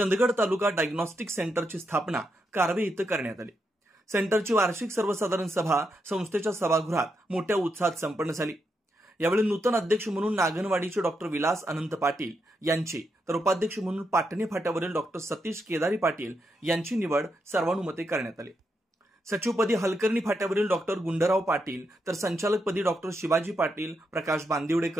तालुका डायग्नोस्टिक सेंटरची स्थापना कारवे इथं करण्यात आली. सेंटरची वार्षिक सर्वसाधारण सभा संस्थेच्या सभागृहात मोठ्या उत्साहात संपन्न झाली. यावेळी नूतन अध्यक्ष म्हणून नागनवाडीचे डॉक्टर विलास अनंत पाटील यांची तर उपाध्यक्ष म्हणून पाटणे फाट्यावरील डॉक्टर सतीश केदारी पाटील यांची निवड सर्वानुमते करण्यात आली. सचिवपदी हलकर्णी फाट्यावरील डॉक्टर गुंडराव पाटील तर संचालकपदी डॉक्टर शिवाजी पाटील, प्रकाश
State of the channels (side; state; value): both; normal; correlation 0.82